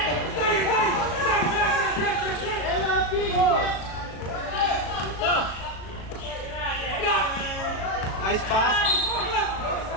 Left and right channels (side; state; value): right; late; 37 ms